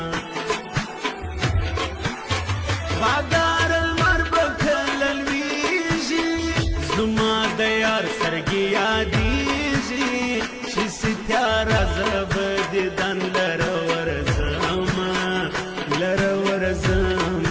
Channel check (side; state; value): both; identical; correlation 1.00